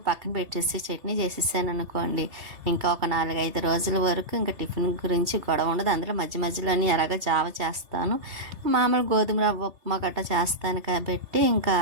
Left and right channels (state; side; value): late; left; 3.3 ms